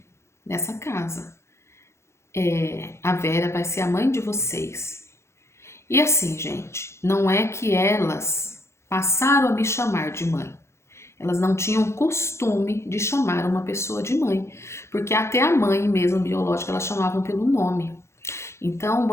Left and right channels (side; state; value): right; late; 0.13 ms